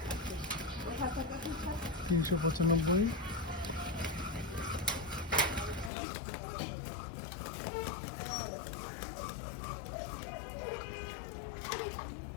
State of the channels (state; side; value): drops out; right; at 5.9 s